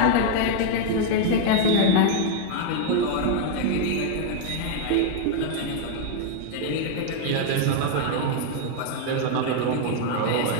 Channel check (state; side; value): different; both; correlation 0.00